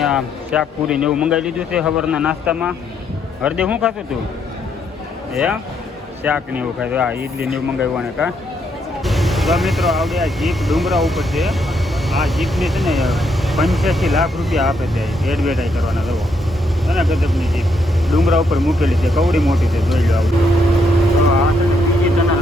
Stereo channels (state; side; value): normal; both; correlation 0.75